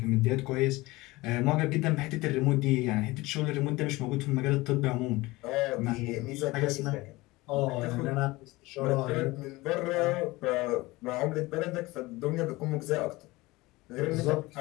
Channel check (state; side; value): quieter; right; 20.9 dB